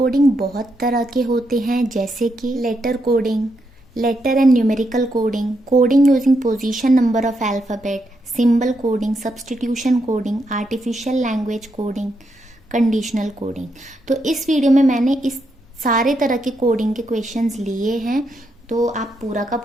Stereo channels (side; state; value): both; normal; correlation 0.81